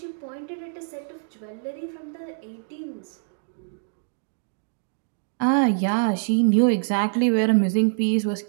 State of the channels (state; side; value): silent; left; digital silence